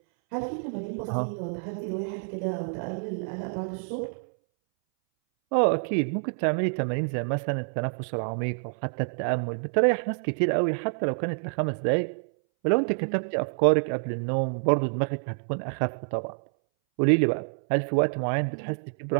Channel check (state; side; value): silent; left; 60 dB below the other